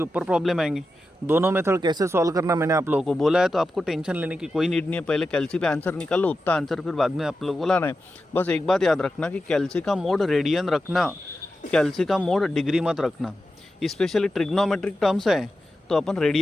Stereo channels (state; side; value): normal; both; correlation 0.91